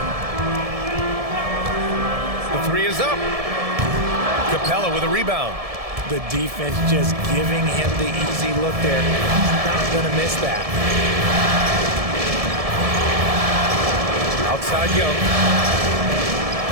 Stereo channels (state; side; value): late; left; 1.7 ms